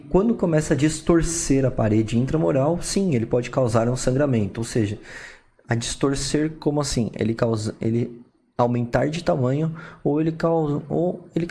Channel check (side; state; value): both; identical; correlation 1.00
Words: quando começa a distorcer a parede intramural, sim, ele pode causar um sangramento, ou seja, a distorcer como assim? Ele aumentar de tamanho ou ele